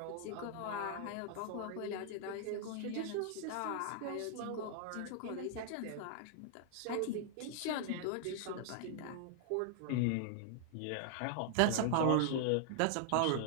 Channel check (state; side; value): different; both; correlation -0.01